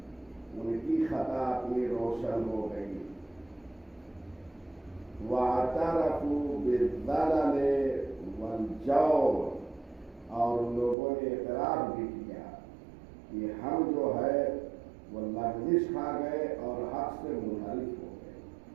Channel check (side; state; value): left; drops out; at 11.0 s